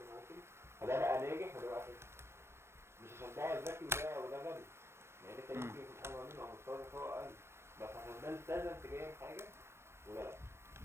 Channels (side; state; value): left; late; 0.12 ms